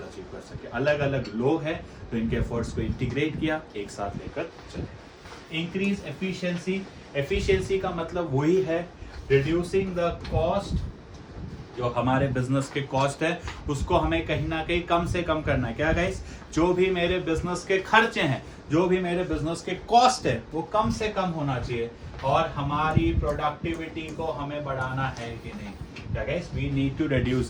अचीव कर सके। अलग अलग लोग हैं तो इनके एफर्ट्स को इंटीग्रेट किया, एक साथ लेकर चले। Increase efficiency. एफिशिएंसी का मतलब वही है रिड्यूसिंग द कॉस्ट, जो हमारे बिजनेस के कॉस्ट है उसको हमें कहीं ना कहीं कम से कम करना है। क्या गाइस? जो भी मेरे बिजनेस के खर्चे हैं, जो भी मेरे बिजनेस के कॉस्ट है, वो कम से कम होना चाहिए। और हमारी प्रोडक्टिविटी को हमें बढ़ाना है कि नहीं? क्या guys? We need to reduce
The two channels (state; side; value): identical; both; correlation 1.00